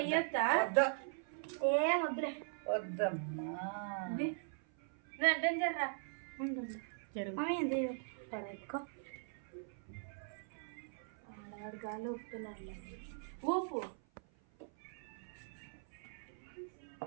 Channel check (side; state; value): left; silent; 51 dB below the other